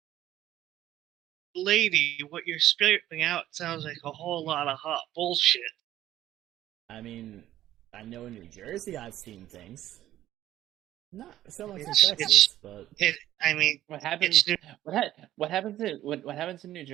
lady, what you're spitting out sounds like a whole lot of hot bullshit. I mean, I know in New Jersey I've seen things. Not so much in It's- Texas, but I mean, What happens? it's What happens in what happens in New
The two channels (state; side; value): quieter; left; 13.4 dB